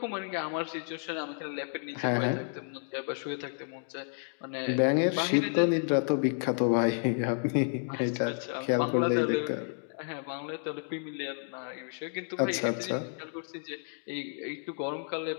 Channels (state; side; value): silent; right; 57 dB below the other